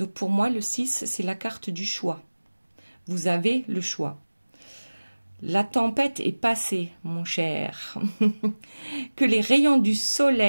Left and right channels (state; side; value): inverted; both; correlation -1.00